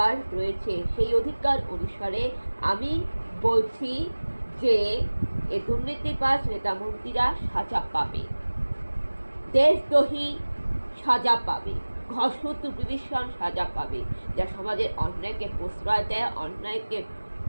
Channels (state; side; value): inverted; both; correlation -1.00